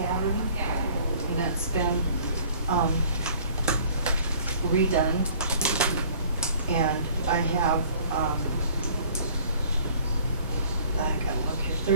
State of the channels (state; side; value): inverted; both; correlation -0.52